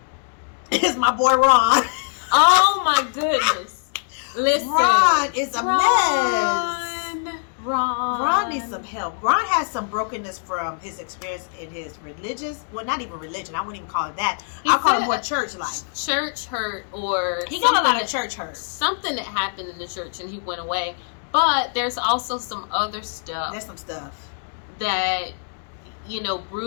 is my boy Ron. Oh my goodness! Listen, Ron is a mess. Ron needs some help. Ron has some brokenness from his experience in his religious, well, not even religion. I wouldn't even call it that. I'll call it more church life. Church hurt, or he got a lot of church hurt. Something that happened in the church and he went away. But there's also some other stuff. There's some stuff that, you know,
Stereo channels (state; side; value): silent; right; digital silence